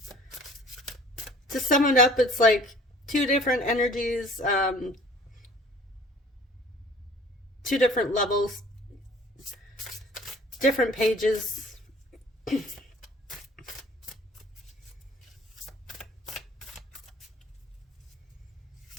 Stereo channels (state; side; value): normal; both; correlation 0.50